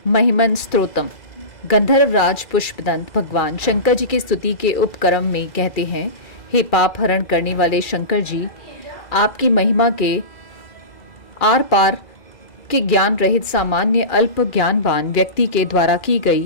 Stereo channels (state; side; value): late; right; 2.3 ms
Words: महिमन स्तोत्रम। गंधर्वराज पुष्पदंत भगवान शंकर जी की स्तुति के उपक्रम में कहते हैं, हे पाप हरण करने वाले शंकर जी, आपकी महिमा के आर पार के ज्ञान रहित सामान्य अल्प ज्ञानवान व्यक्ति के द्वारा की